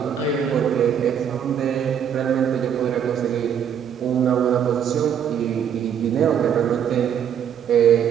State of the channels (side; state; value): left; quieter; 8.5 dB